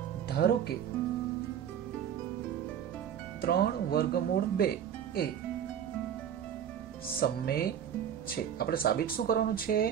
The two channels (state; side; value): quieter; left; 9.2 dB